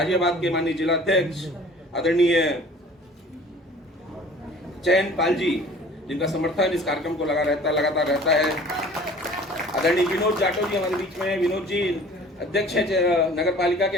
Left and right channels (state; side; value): normal; both; correlation 0.47